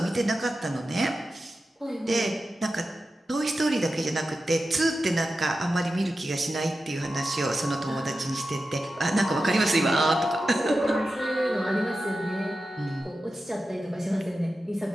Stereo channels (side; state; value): both; normal; correlation 0.92